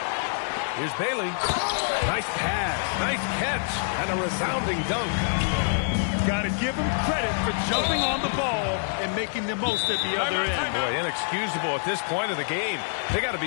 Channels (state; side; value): silent; right; digital silence